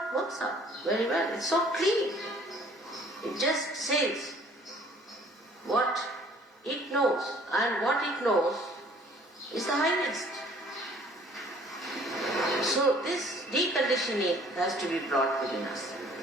works out very well. It's so clean. It just says what it knows, and what it knows is the highest. So this deconditioning has to be brought within us.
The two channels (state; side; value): normal; both; correlation 0.55